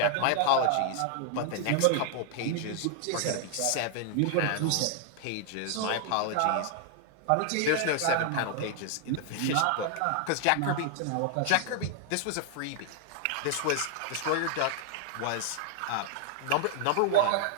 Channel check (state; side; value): different; both; correlation 0.00